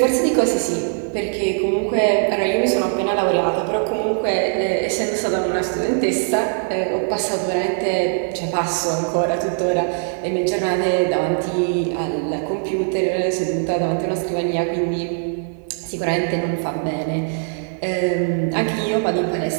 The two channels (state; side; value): silent; left; digital silence